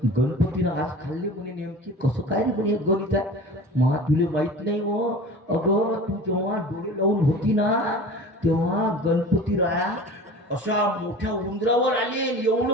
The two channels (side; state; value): both; normal; correlation 0.38